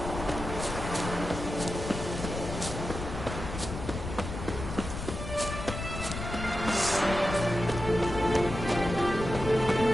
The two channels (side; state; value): left; noise; rumble, 7 dB below the sound